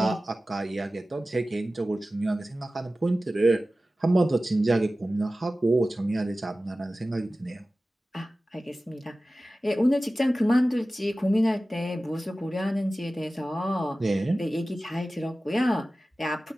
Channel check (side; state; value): both; normal; correlation 0.96